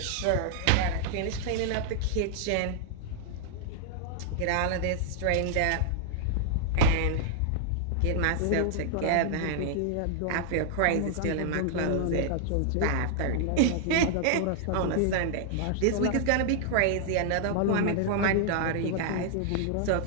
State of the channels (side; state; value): both; different; correlation 0.00